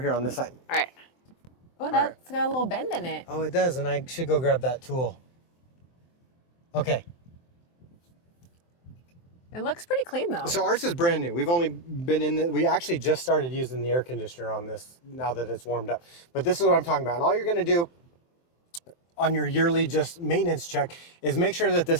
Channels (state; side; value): late; right; 23 ms